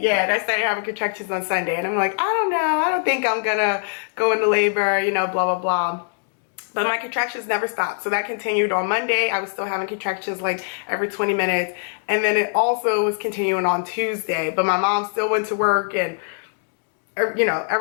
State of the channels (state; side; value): silent; right; digital silence